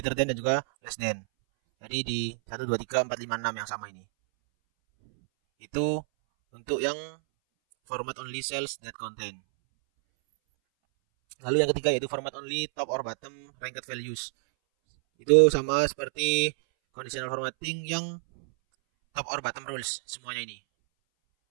than dan juga less than. Jadi di 1 2 3 4 5 6 yang sama ini. Itu untuk yang format only cells that contain. Lalu yang ketiga yaitu format only top or bottom ranked values. Itu sama seperti conditional formatting yang top or bottom rules semuanya ini.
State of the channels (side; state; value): left; silent; 59 dB below the other